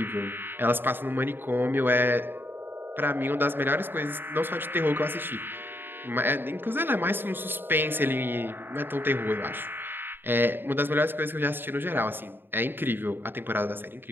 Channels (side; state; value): left; late; 0.098 ms